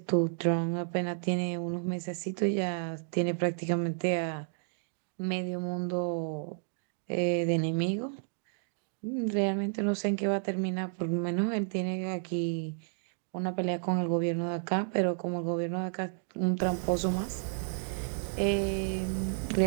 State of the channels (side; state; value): left; silent; 57 dB below the other